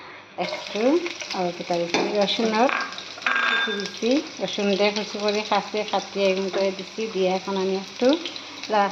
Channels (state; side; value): identical; both; correlation 1.00